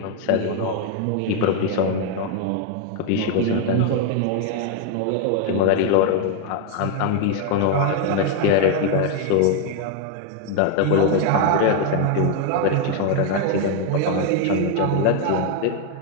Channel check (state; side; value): different; both; correlation 0.01